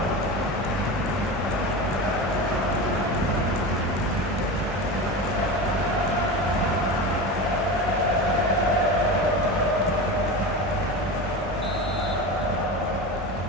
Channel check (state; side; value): normal; both; correlation 0.26